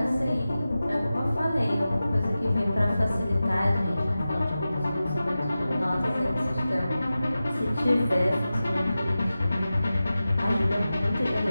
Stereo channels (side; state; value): both; inverted; correlation -0.94